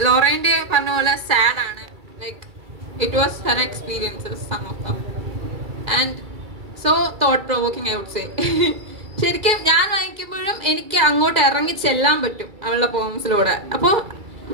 ലൊറൈൻ്റെ പറഞ്ഞ പോലെ സാഡ് ആണ്. Like it was her experiences some of them and so thought provoking I would say. ശരിക്കും ഞാൻ വായിക്കുമ്പോഴും എനിക്ക് അങ്ങോട്ട് ഇറങ്ങി ചെല്ലാൻ പറ്റും അവളുടെ പോംസിലൂടെ. അപ്പോൾ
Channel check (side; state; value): left; late; 2.3 ms